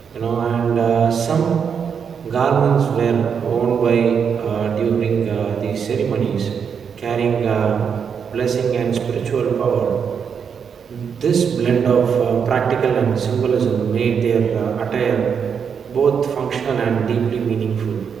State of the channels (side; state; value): left; quieter; 6.9 dB